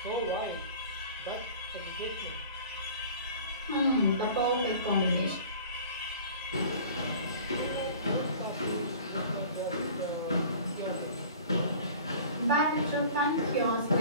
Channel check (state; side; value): inverted; both; correlation -0.44